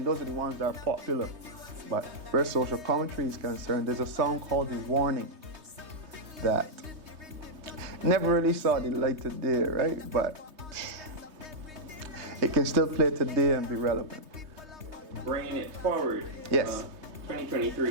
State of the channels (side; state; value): left; late; 3.2 ms